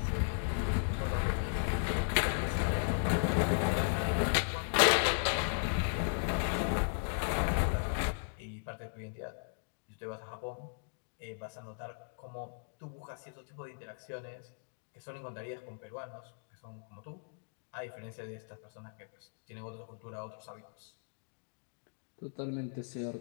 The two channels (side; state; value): right; silent; digital silence